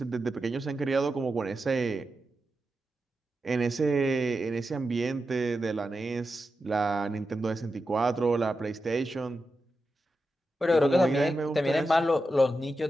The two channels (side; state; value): both; normal; correlation 0.90